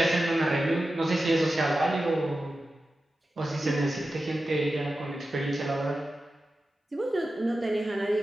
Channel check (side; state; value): both; normal; correlation 0.93